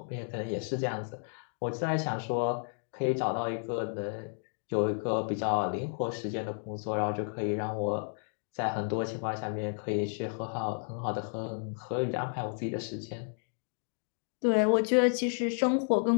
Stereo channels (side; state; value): right; silent; 56 dB below the other